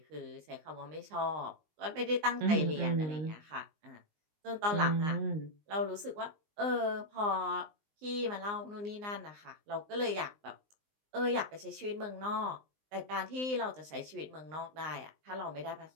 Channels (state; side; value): late; left; 19 ms